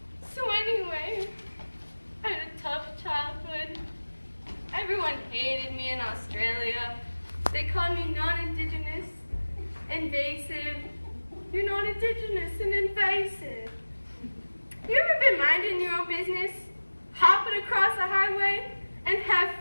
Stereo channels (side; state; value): both; inverted; correlation -1.00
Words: So anyway, I had a tough childhood. Everyone hated me in Australia. They called me non-indigenous, invasive. You're non-indigenous and invasive. You ever been minding your own business, hopping across a highway, and have